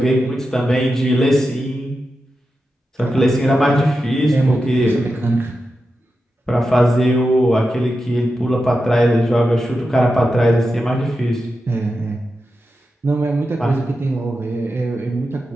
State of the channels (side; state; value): both; normal; correlation 0.90